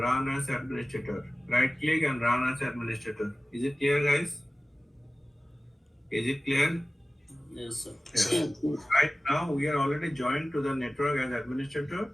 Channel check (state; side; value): normal; both; correlation 0.97